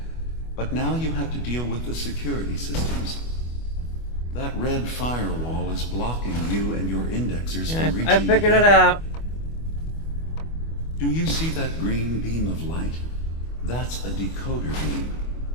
But now you have to deal with the security systems. That red firewall is blocking you and your indexers from reaching I figured it out. Do you see that green beam of light? That's a decoder beam.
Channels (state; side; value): late; right; 25 ms